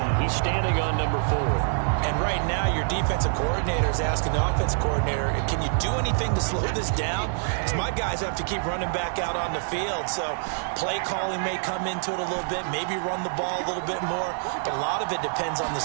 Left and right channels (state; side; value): silent; left; digital silence